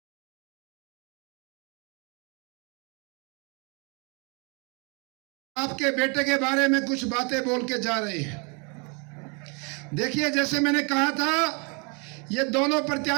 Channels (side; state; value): left; quieter; 33.4 dB